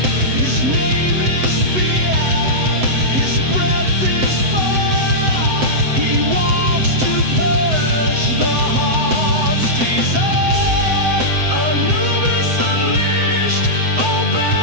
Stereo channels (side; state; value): left; late; 7.8 ms